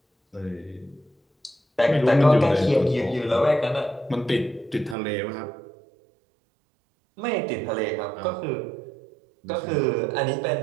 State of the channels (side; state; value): left; drops out; at 5.0 s